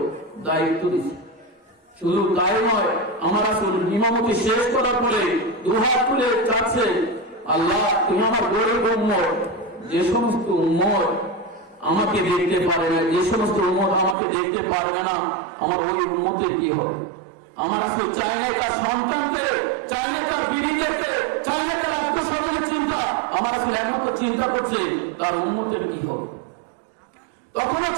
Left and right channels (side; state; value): left; drops out; at 14.2 s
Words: দায়িত্ব দিচ্ছে। শুধু তাই নয়, আমার রাসূল ইমামতি শেষ করার পরে দুহাত তুলে চাচ্ছে, আল্লাহ তুমি আমার গরিব উম্মত, যে সমস্ত উম্মত আমাকে দেখতে পারে না, যে সমস্ত উম্মত আমাকে দেখতে পারবে না, আমার ওই উম্মতের কি হবে? আমার রাসূল চাইলে তার সন্তানকে, চাইলে তার বিবিদেরকে, চাইলে তার আত্মস্বজনের চিন্তা, আমার রাসূল একমাত্র চিন্তা করছে তার উম্মতের কি হবে। তখনও